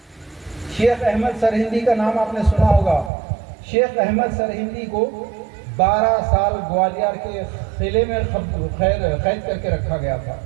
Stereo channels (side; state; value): left; drops out; at 3.1 s